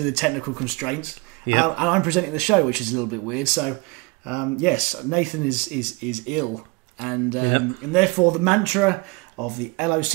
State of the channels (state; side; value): quieter; left; 26.8 dB